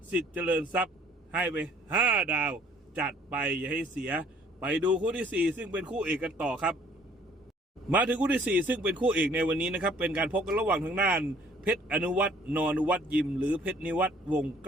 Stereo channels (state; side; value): normal; both; correlation 0.58